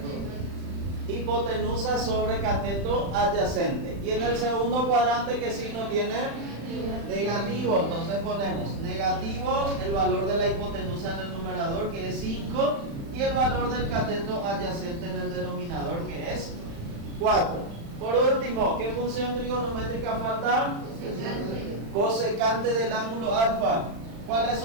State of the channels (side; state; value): left; late; 35 ms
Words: Hipotenusa sobre cateto adyacente. Y en el segundo cuadrante, ¿qué signo tiene? Negativo. Entonces ponemos negativo, el valor de la hipotenusa en el numerador, que es 5, y el valor del cateto adyacente en el denominador, que es 4. Por último, ¿qué función trigonométrica falta? Cosecante del ángulo alfa. ¿Cuál es su